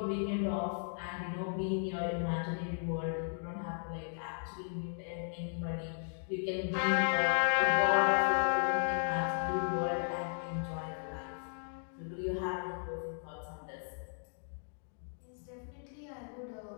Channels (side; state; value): right; silent; digital silence